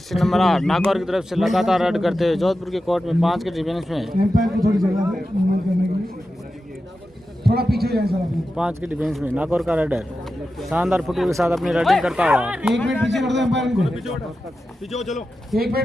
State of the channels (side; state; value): both; normal; correlation 0.92